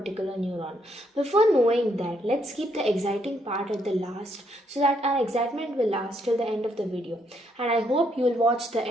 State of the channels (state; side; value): normal; both; correlation 0.73